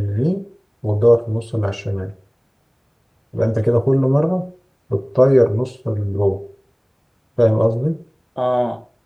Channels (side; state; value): both; identical; correlation 1.00